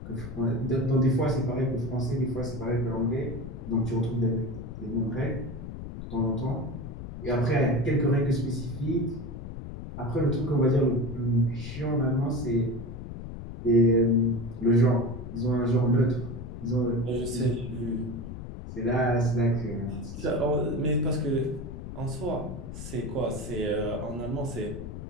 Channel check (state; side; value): noise; left; rumble, 9 dB below the sound